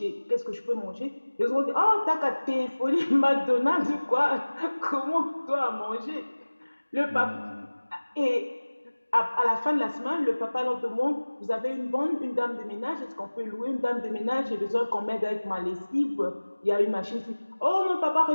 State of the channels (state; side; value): inverted; both; correlation -1.00